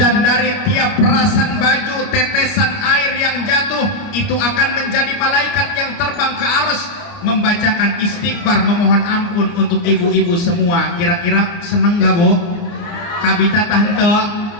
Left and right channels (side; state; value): right; late; 29 ms